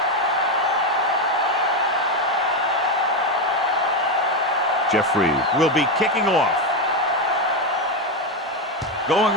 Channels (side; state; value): both; normal; correlation 0.09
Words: Jeffrey will be kicking off. Going